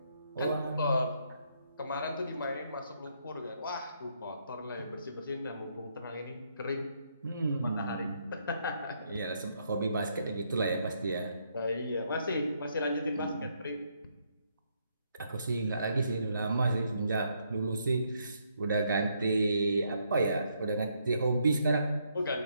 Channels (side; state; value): both; inverted; correlation -0.74